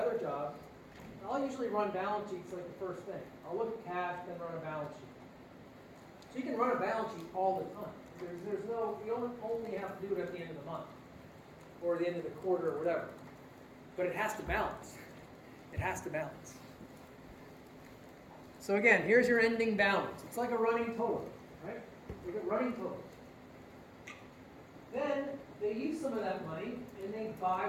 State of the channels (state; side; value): identical; both; correlation 1.00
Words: job, I'll usually run balance sheets like the first thing. I'll look at cash, then run a balance sheet. So you can run a balance sheet all the time. You only have to do it at the end of the month or the end of the quarter or whatever. But it has to balance. It has to balance. So again, here's your ending balance. It's like a running total, right? Look at running total. Then they use some of that money and they